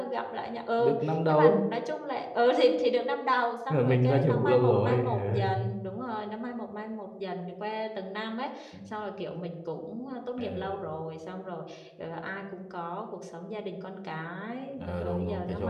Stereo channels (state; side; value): identical; both; correlation 1.00